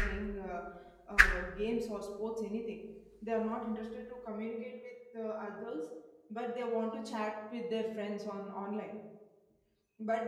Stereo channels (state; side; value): identical; both; correlation 1.00